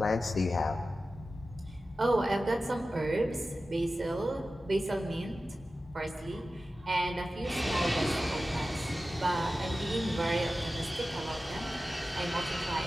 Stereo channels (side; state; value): both; normal; correlation 0.94